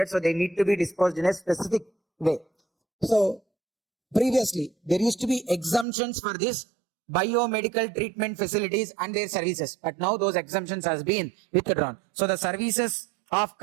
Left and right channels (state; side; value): drops out; left; at 5.9 s